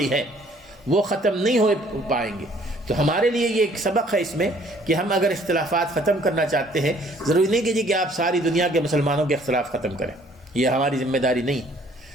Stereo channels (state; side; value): normal; both; correlation 0.59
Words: ہے، وہ ختم نہیں ہو پائیں گے۔ تو ہمارے لیے یہ ایک سبق ہے اس میں کہ ہم اگر اختلافات ختم کرنا چاہتے ہیں، ضروری نہیں کہ جی کہ آپ ساری دنیا کے مسلمانوں کے اختلاف ختم کریں، یہ ہماری ذمہ داری نہیں،